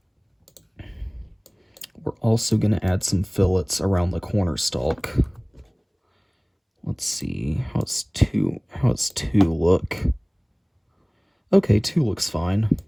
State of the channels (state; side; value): identical; both; correlation 1.00